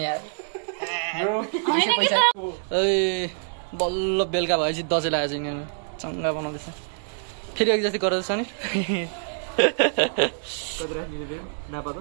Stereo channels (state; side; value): silent; left; digital silence